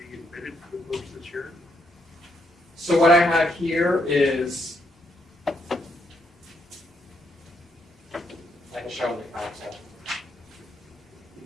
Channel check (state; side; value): normal; both; correlation 0.75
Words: admitted to the books this year? So what I have here is, I can show them the council.